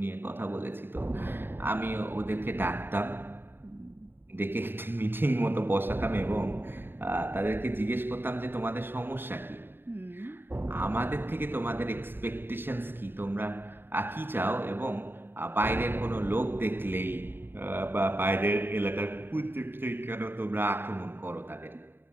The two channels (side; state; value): left; late; 0.10 ms